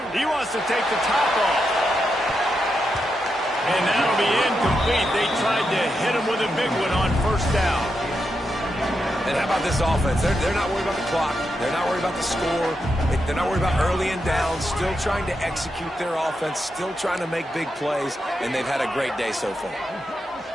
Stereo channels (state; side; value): normal; both; correlation 0.85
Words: he wants to take the top off. And that'll be incomplete. They tried to hit him with a big one on first down. And how about this offense? They're not worried about the clock. They're not worried about the score. They're not worried about early and down. Still trying to execute their offense. Still trying to make big plays. And they've had a great day so far.